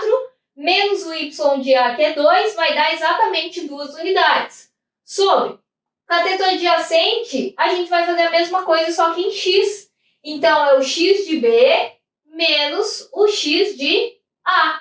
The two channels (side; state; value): both; identical; correlation 1.00